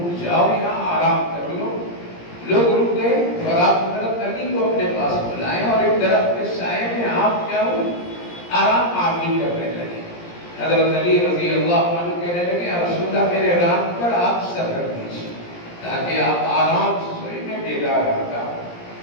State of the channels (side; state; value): right; late; 17 ms